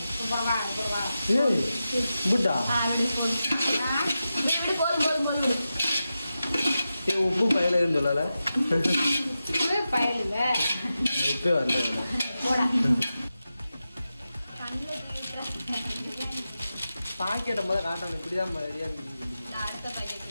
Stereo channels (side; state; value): both; inverted; correlation -0.91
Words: உப்பு பயலுன்னு சொல்லல, பயலுங்க உப்பே வரல. பாக்கெட்டை முதல்ல காட்டணும், இப்படிதான்